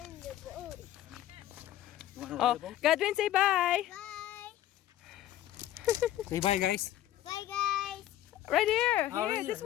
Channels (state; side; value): quieter; right; 13.1 dB